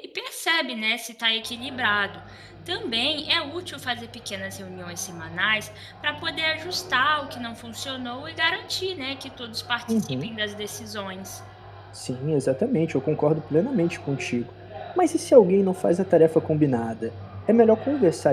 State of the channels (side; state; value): both; identical; correlation 1.00